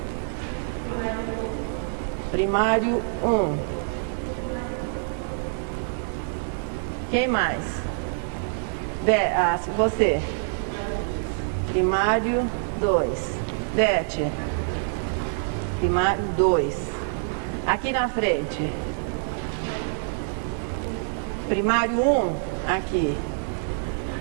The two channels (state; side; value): silent; left; digital silence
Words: Primário 1. Quem mais? Você. Primário 2. Beth. Primário 2. Aqui na frente. Primário 1. Aqui.